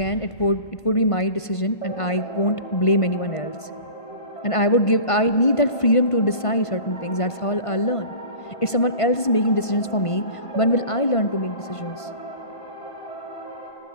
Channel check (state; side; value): late; right; 1.5 ms